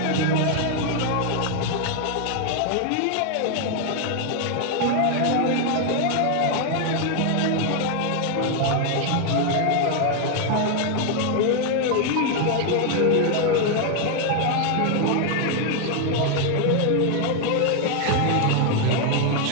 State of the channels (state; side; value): different; both; correlation 0.00